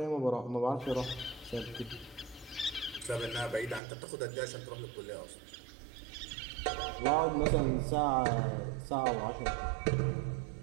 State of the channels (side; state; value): left; drops out; at 3.8 s